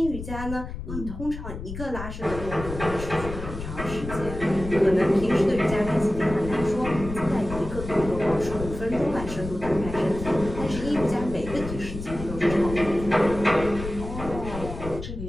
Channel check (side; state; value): left; noise; rumble, 9 dB below the sound